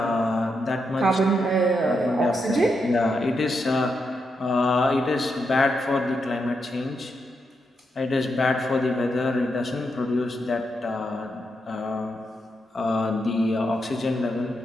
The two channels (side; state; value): both; normal; correlation 0.83